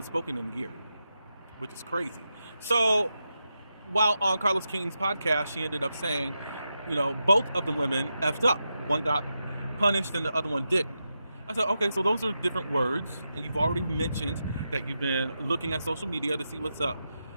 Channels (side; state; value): both; inverted; correlation -0.88